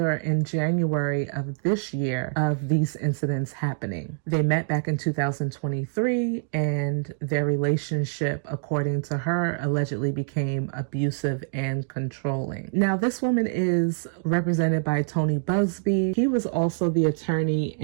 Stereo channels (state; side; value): silent; left; digital silence